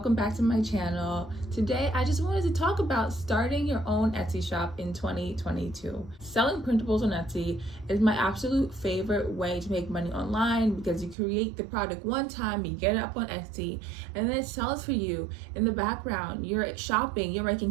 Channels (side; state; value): left; drops out; at 11.2 s